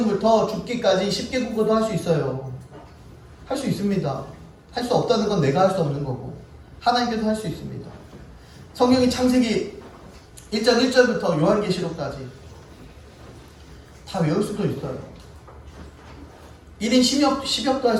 죽기까지 10개 국어도 할 수 있어요. 할 수 있습니다. 할 수 없다는 건 내가 할 수 없는 거고 하나님께서 할 수 있습니다. 성경이 창세기 1장 1절부터 요한계시록까지 다 외울 수도 있어요. 1인 10역도 할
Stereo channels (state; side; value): identical; both; correlation 1.00